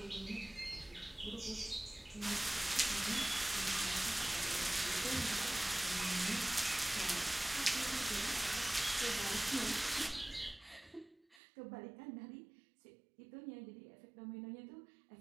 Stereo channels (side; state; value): left; drops out; at 11.4 s